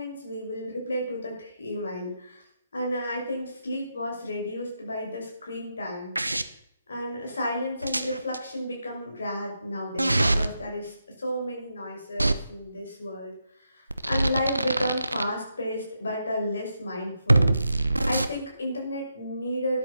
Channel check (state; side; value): inverted; both; correlation -0.84